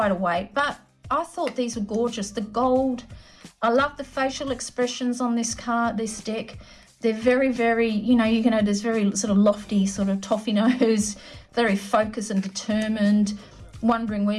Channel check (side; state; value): both; identical; correlation 1.00